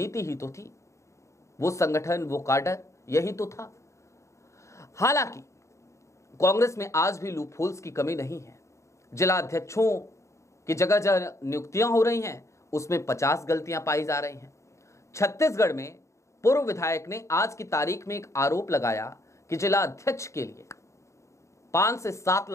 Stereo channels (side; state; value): right; late; 0.14 ms